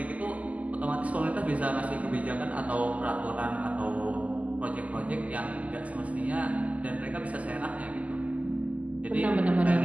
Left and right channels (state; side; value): late; left; 0.072 ms